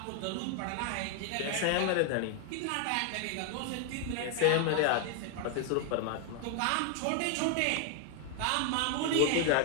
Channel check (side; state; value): both; different; correlation 0.00